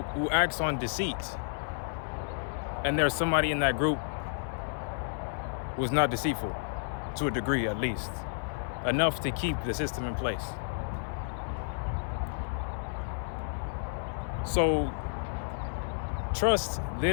who acts on deceit and there's somebody in that group who's not deceitful, to a degree at least. enough to keep the system in place. So trust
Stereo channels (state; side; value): silent; right; digital silence